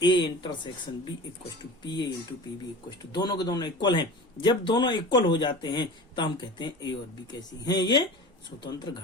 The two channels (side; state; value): both; normal; correlation 0.34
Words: A intersection B equal to P A into P B equal to, दोनों के दोनों इक्वल हैं। जब दोनों इक्वल हो जाते हैं तो हम कहते हैं ए और बी कैसी हैं, ये स्वतंत्र